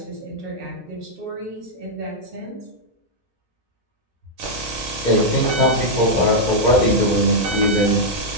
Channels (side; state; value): both; normal; correlation -0.05